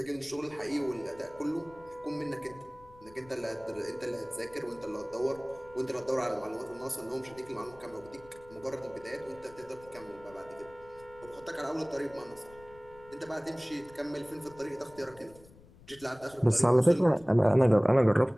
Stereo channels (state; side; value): noise; left; rumble, 23 dB below the sound